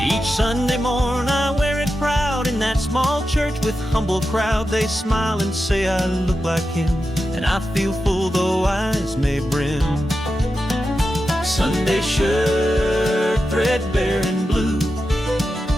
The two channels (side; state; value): both; normal; correlation 0.90